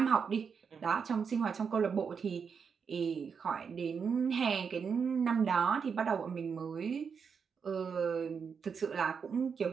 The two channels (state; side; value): quieter; left; 6.2 dB